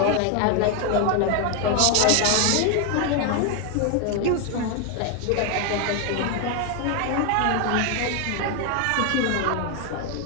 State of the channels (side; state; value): both; different; correlation 0.01